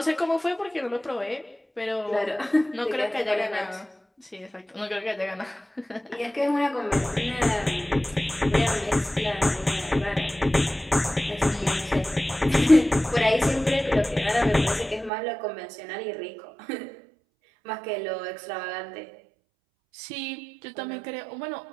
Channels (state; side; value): drops out; left; at 15.1 s